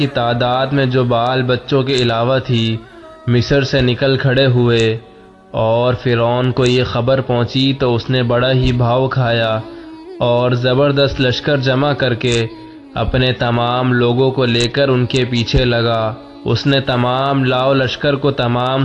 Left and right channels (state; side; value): identical; both; correlation 1.00